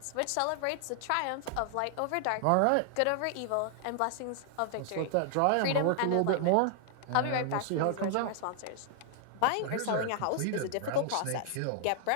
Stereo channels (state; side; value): different; both; correlation 0.00